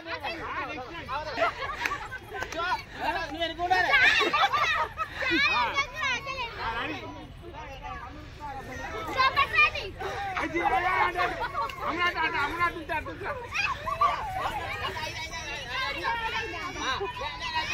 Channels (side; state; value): both; identical; correlation 1.00